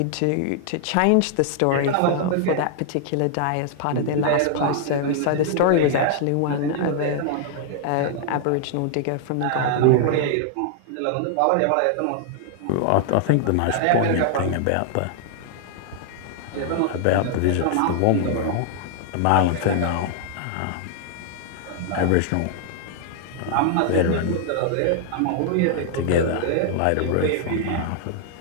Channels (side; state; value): both; different; correlation -0.01